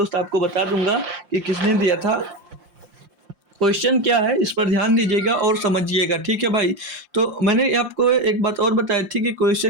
आपको बता दूंगा कि किसने दिया था। क्वेश्चन क्या है इस पर ध्यान दीजिएगा और समझिएगा, ठीक है भाई। तो मैंने आपको एक बात और बताई थी कि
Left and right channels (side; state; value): left; late; 5.7 ms